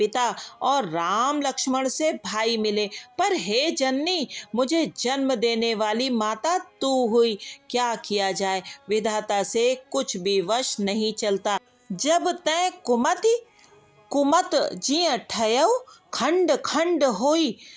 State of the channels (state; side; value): identical; both; correlation 1.00